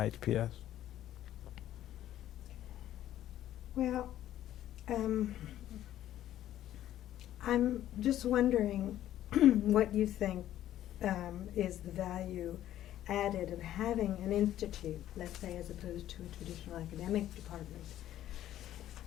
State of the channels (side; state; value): right; quieter; 12.5 dB